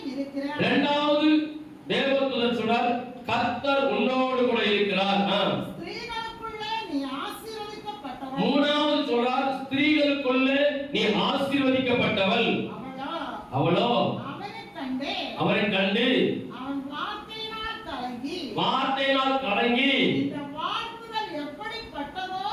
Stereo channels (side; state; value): both; identical; correlation 1.00